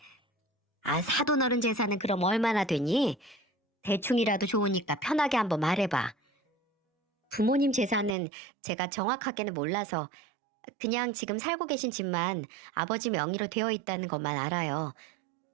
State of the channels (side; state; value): left; drops out; at 8.2 s